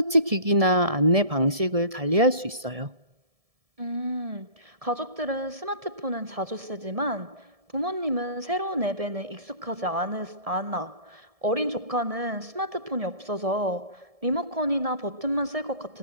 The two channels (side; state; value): left; late; 1.7 ms